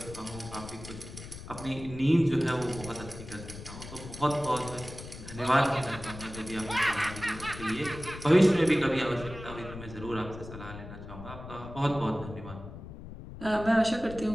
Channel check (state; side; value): noise; left; rumble, 12 dB below the sound